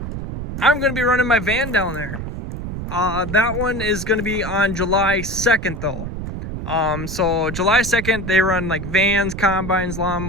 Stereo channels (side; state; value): right; noise; rumble, 6 dB below the sound